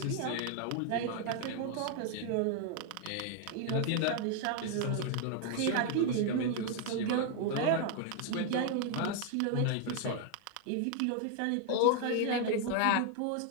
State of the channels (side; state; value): both; different; correlation 0.00